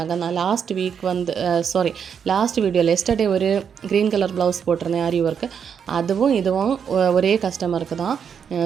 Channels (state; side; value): quieter; left; 7.3 dB